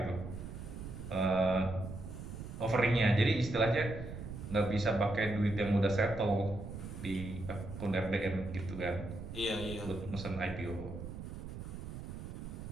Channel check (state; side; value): noise; right; rumble, 9 dB below the sound